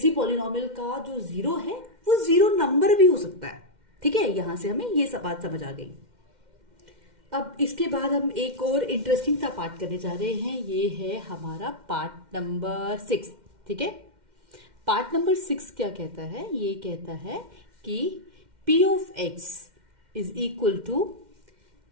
पॉलिनोमियल का जो 0 है वो 0 नंबर भी हो सकता है। ठीक है, यहां से हमें ये सब बात समझ आ गई। अब इसके बाद हम एक और इंटरेस्टिंग सा पार्ट करने जा रहे हैं। ये है हमारा पार्ट नंबर 6। ठीक है, पार्ट नंबर 6 क्या कहता है, ये कहता है कि p of x is equal to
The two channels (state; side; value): late; left; 2.1 ms